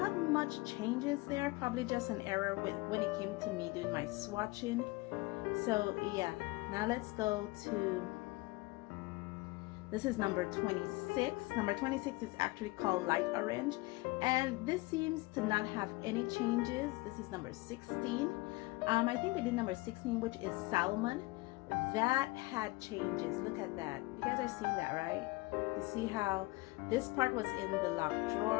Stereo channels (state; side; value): quieter; right; 22.4 dB